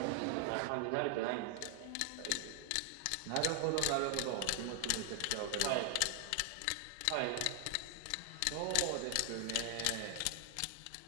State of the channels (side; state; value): both; different; correlation 0.00